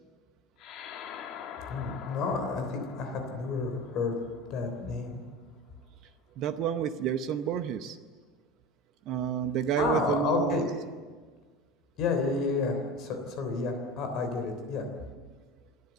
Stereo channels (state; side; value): normal; both; correlation 0.31